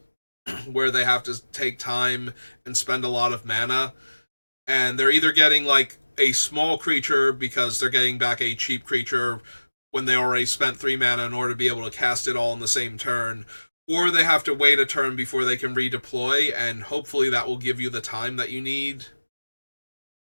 where they have to take time and spend a lot of mana. And they're either getting like a small creature because they're getting back a cheap creature when they already spent 3 mana in order to be able to cast it all in the same turn, or they have to wait a turn before they can redeploy, and hopefully that will give you the time that you need.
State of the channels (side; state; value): both; inverted; correlation -1.00